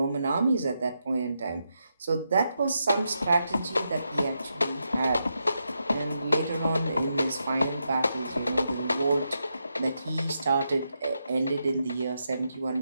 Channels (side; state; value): both; inverted; correlation -0.84